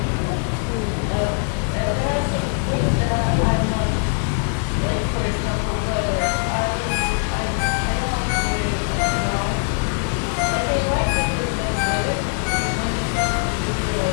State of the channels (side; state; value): right; silent; 56 dB below the other